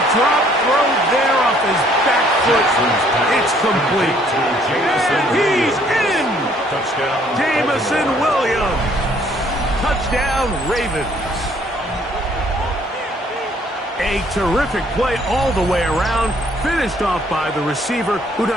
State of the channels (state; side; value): normal; both; correlation 0.63